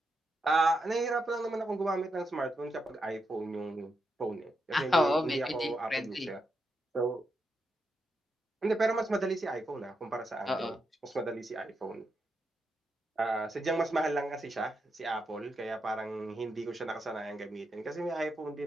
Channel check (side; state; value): both; normal; correlation 0.84